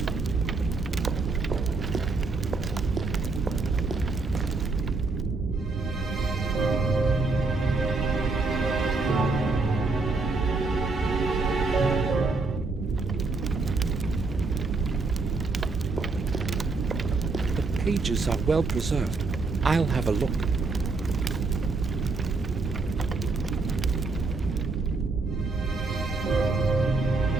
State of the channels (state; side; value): quieter; left; 3.8 dB